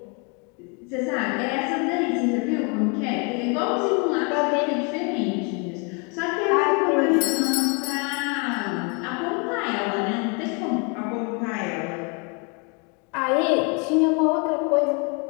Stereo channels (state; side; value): quieter; right; 33.9 dB